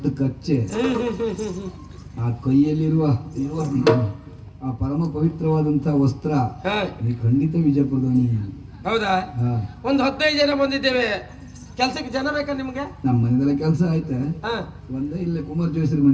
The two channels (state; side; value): identical; both; correlation 1.00